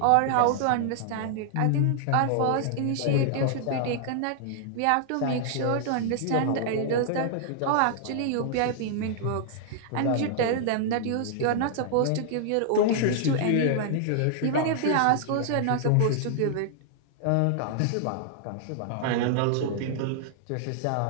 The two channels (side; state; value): both; different; correlation -0.01